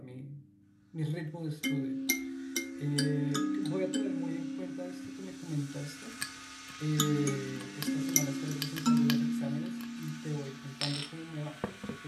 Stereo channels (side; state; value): both; identical; correlation 1.00